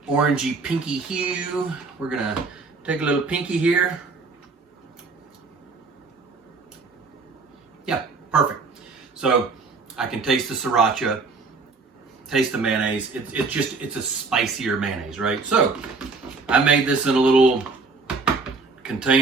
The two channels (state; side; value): quieter; left; 4.2 dB